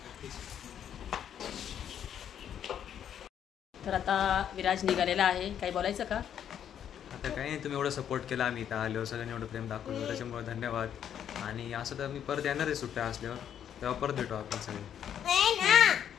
तर आता विराज निघालेला आहे. काही बोलायचं का? आता काही नाही, तुम्ही एवढं सपोर्ट केला. आम्ही इथं आलो, सगळ्यांनी एवढं प्रेम दाखवलं, त्याच्यामुळे धन्यवाद. आणि असं तर मी परत येणार आहे सुट्ट्या असल्यावर. तेव्हा परत भेटू आपण सगळे.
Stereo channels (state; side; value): quieter; right; 9.3 dB